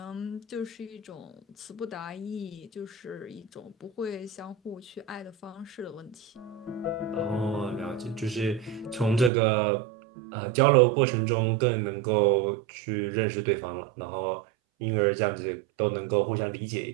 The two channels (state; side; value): drops out; left; at 9.3 s